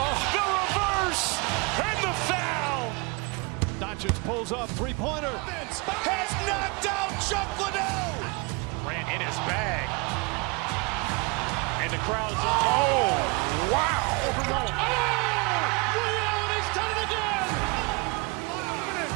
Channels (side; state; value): left; quieter; 29.4 dB